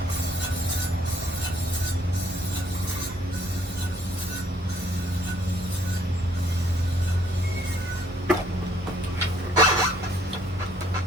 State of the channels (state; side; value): normal; both; correlation 0.64